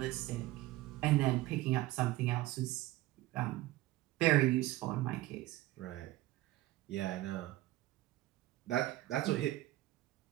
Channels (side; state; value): left; quieter; 16.9 dB